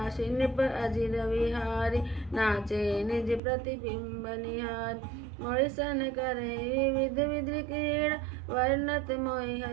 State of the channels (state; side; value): drops out; left; at 3.4 s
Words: नृप अजिर विहारी, नाचे निज प्रतिबिंब निहार। मोहिसन करे विविध विधि क्रीड़ा, वर्णत मोहि